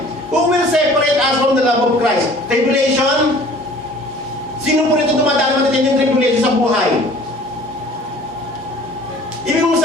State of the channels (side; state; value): both; normal; correlation 0.49